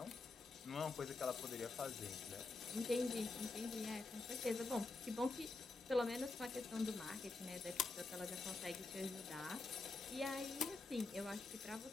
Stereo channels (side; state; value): right; quieter; 3.5 dB